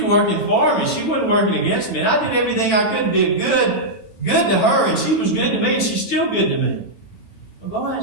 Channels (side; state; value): right; late; 9.1 ms